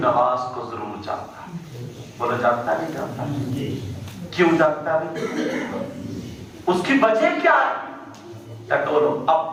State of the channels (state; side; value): identical; both; correlation 1.00